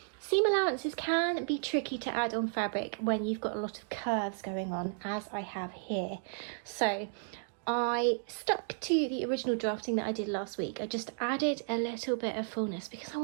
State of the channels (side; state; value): left; silent; digital silence